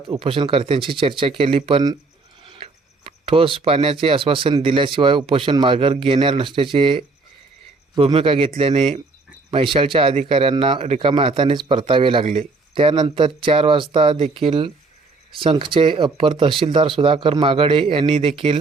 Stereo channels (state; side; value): quieter; left; 3.7 dB